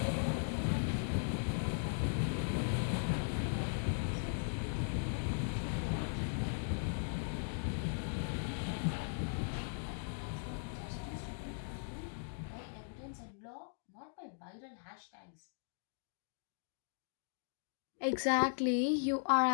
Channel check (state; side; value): silent; right; digital silence